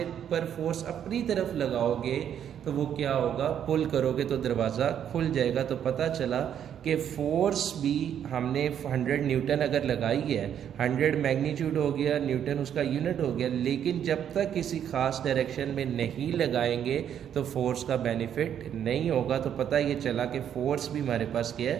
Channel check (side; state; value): left; quieter; 9.3 dB